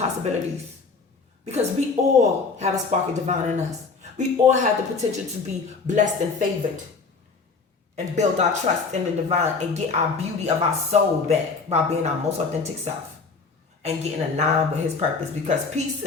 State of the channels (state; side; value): quieter; right; 4.5 dB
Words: Because we all have a spark of divine in us. We all have the potential to be blessed and favored and build our trust in the divine and get our beauty of our soul back by being our most authentic self and getting aligned with his purpose. Because peace